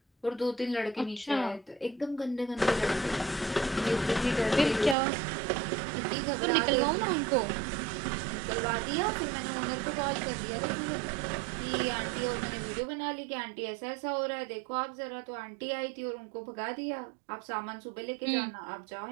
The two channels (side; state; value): left; drops out; at 5.0 s